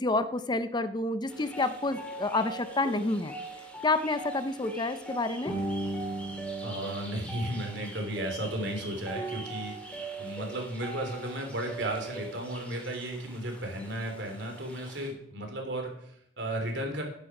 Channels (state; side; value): normal; both; correlation 0.39